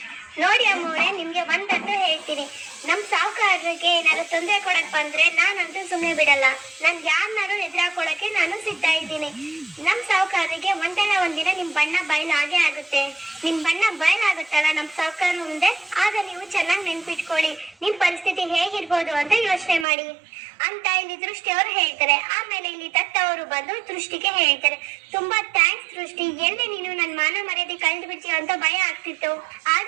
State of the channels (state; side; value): drops out; left; at 19.9 s